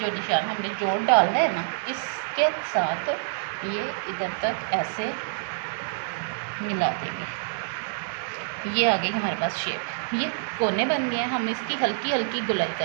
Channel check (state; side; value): silent; left; digital silence